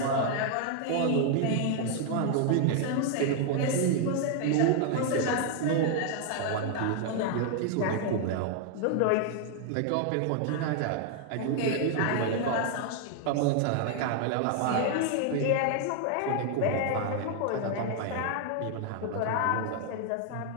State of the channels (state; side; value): different; both; correlation 0.00